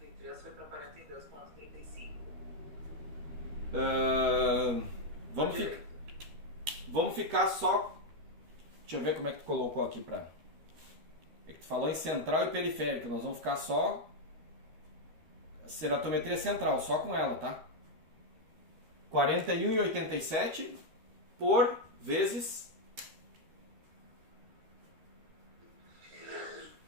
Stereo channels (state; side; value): late; left; 13 ms